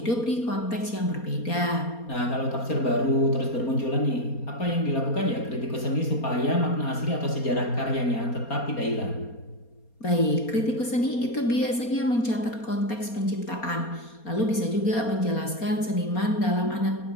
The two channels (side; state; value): right; late; 4.3 ms